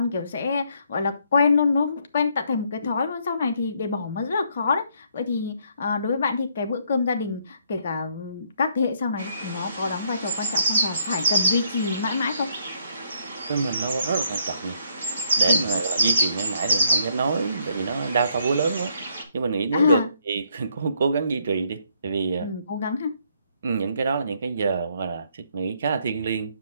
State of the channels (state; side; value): inverted; both; correlation -0.70